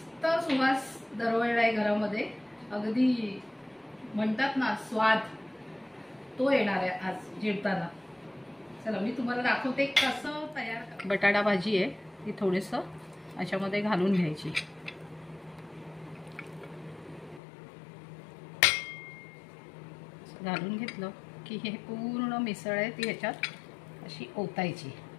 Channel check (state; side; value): drops out; right; at 17.4 s